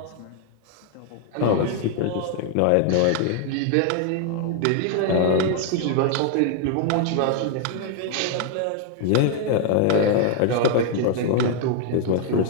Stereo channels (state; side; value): different; both; correlation 0.00